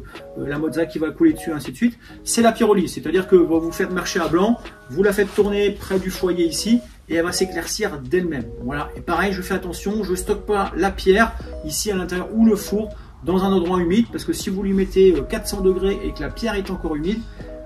la mozza qui va couler dessus, ainsi de suite, c'est la pyrolyse. C'est-à-dire que vous faites marcher à blanc, vous la faites tourner près du foyer ici, et elle va s'éclaircir d'elle-même. Voilà. Et pareil, je fais attention, je ne stocke pas la pierre ici à l'intérieur ou le four dans un endroit humide, parce que si vous lui mettez 400 degrés et que la pierre est encore humide,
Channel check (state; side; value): identical; both; correlation 1.00